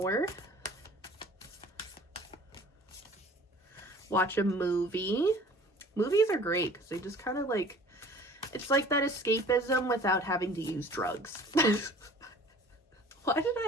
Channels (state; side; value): normal; both; correlation 0.48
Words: Watch a movie. Movies are great because they just kind of like, it's like that escapism without having to use drugs. Why did